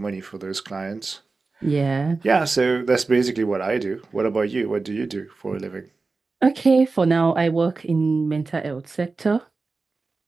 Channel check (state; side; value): quieter; left; 3.9 dB